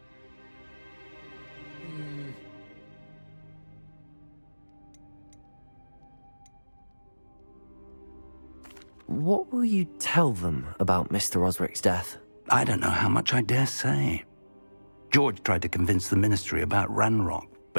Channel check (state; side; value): inverted; both; correlation -1.00